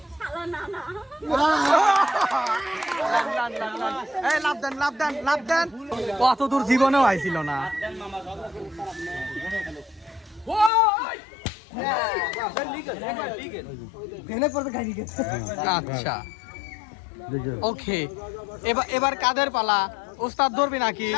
শালা না না এই লাভ দেন লাভ দেন লাভ দেন কত দূর জীবনেও আইছিল না ভেনে পড়তে খাই গেছে আচ্ছা ওকে এবার কাদের পালা উস্তাদ ধরবি নাকি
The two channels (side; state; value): right; drops out; at 10.7 s